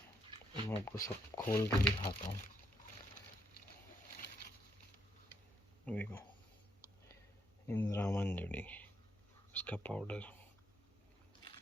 मैं आपको सब खोल के दिखाता हूँ, देखो इंद्रावण जड़ी, उसका पाउडर।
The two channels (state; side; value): normal; both; correlation 0.77